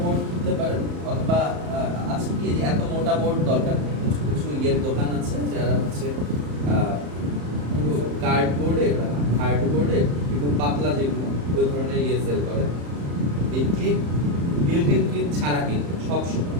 বোর্ড কিনতে পারেন অথবা আছে কি যে এত মোটা বোর্ড দরকার নেই কিছু কিছু ইয়ের দোকান আছে যারা হচ্ছে কার্ডবোর্ডের হার্ডবোর্ডের একটু পাতলা যেগুলো ওই ধরনের ইয়ে সেল করে এই ক্লিপ বিল্ট ইন ক্লিপ ছাড়া কিনবেন সব সময়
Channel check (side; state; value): left; late; 34 ms